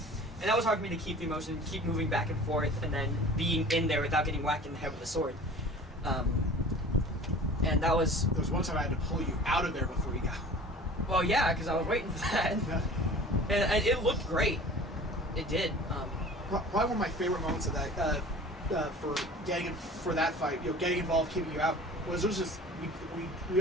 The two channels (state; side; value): normal; both; correlation 0.43